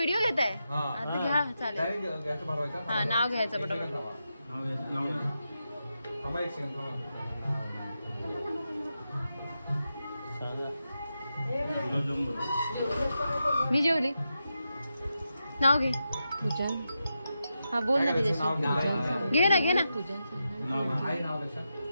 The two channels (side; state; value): both; inverted; correlation -0.88